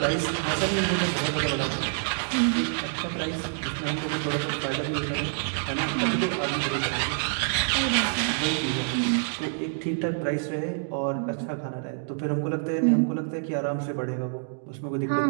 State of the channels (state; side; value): silent; left; digital silence